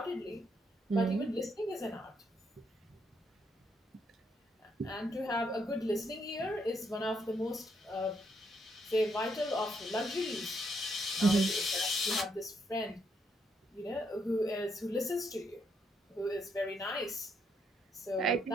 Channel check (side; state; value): both; normal; correlation 0.75